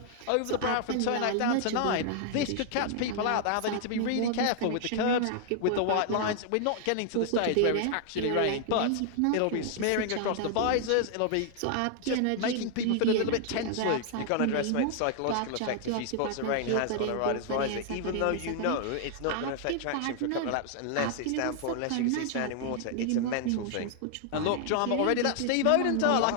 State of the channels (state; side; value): different; both; correlation 0.00